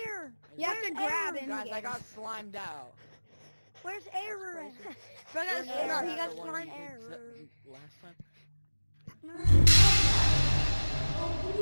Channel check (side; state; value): both; inverted; correlation -1.00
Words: You have to grab it. Guys, I got slimed out. Where's air? That's crazy. Bro, Where's no, air? he got The one we slime did error. last time.